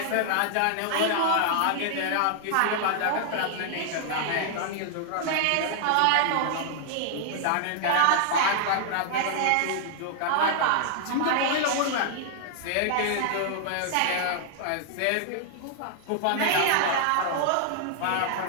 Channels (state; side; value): different; both; correlation -0.01